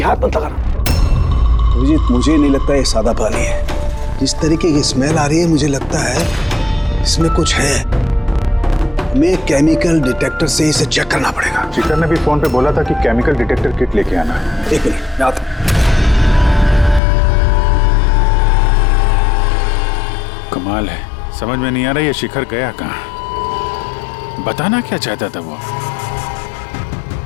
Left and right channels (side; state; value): right; drops out; at 17.0 s